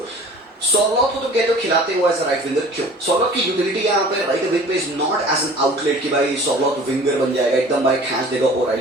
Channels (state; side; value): normal; both; correlation 0.45